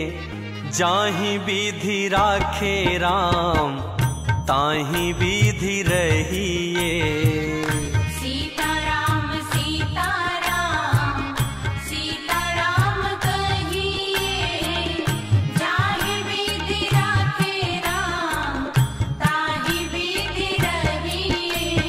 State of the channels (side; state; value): both; identical; correlation 1.00